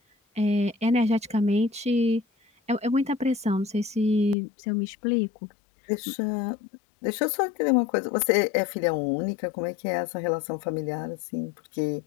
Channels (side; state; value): right; drops out; at 4.4 s